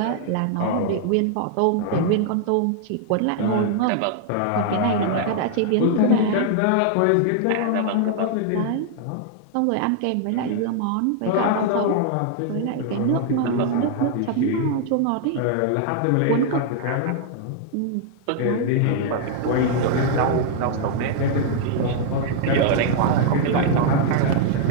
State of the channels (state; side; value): different; both; correlation 0.00